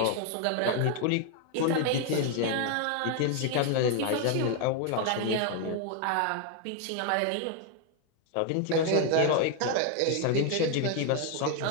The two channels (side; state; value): both; different; correlation 0.01